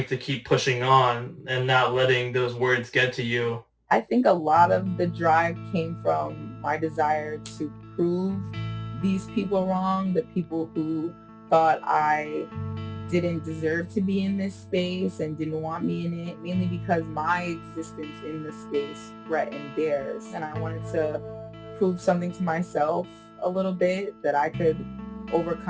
to keep pushing on and not letting those words get to you? I think a lot of the drive came from my desire to prove these people wrong, the people who thought I didn't deserve to be in this space and didn't want me in it, mainly because my existence in the space threatened theirs. And I wanted to prove something to myself a little bit, that I could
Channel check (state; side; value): identical; both; correlation 1.00